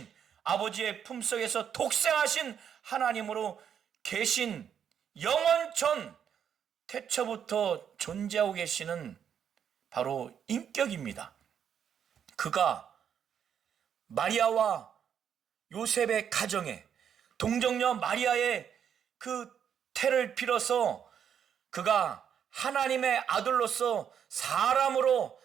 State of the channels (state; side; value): quieter; left; 8.4 dB